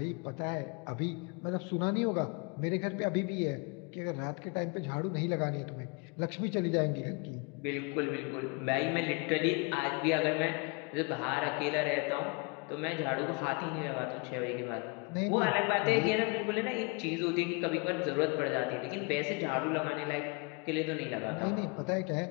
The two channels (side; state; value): right; quieter; 31.3 dB